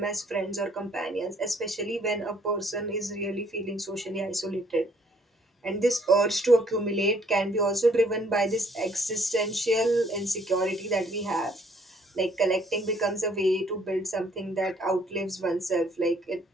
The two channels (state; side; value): normal; both; correlation 0.63